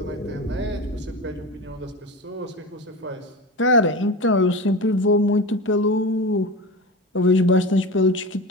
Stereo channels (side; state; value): both; normal; correlation 0.27